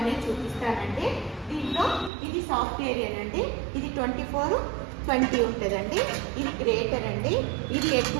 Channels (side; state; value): left; drops out; at 2.1 s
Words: చూపిస్తానండి. దీంట్లో ఇది సాఫ్ట్వేర్ అండి, ఇది 24/20 ఉంటుందండి. ఇది గ్రేటర్ అండి, ఇది ఎగ్